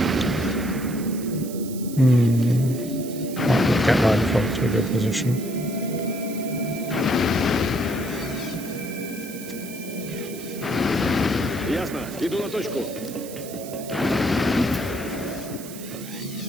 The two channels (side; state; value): right; noise; hiss, 14 dB below the sound